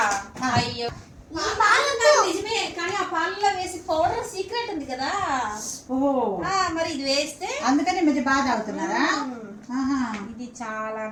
అయ్యో నిజమే, కానీ ఆ పాలలో వేసి పౌడర్ సీక్రెట్ ఉంది కదా. మరి ఇది వేస్తే అందుకని మధ్య బాగా తాగుతున్నారా? ఇది చాలా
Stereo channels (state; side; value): identical; both; correlation 1.00